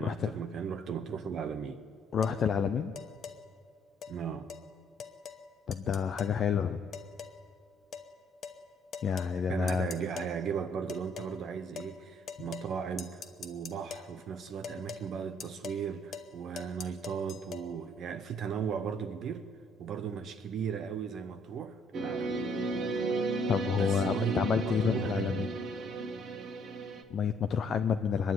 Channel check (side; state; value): both; normal; correlation 0.65